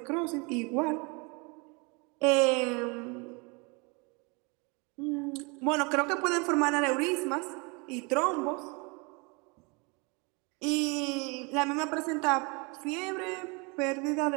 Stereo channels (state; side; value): quieter; left; 29.9 dB